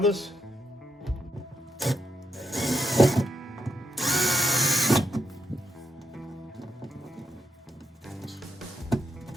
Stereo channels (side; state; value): both; normal; correlation 0.82